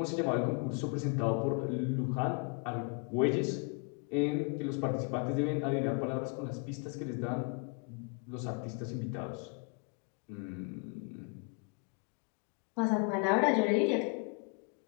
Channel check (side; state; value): right; quieter; 34.8 dB